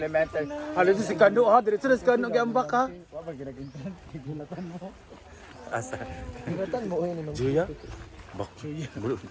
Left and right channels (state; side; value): identical; both; correlation 1.00